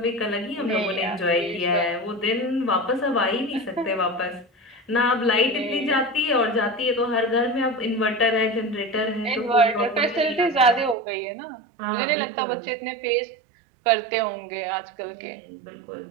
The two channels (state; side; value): drops out; left; at 11.0 s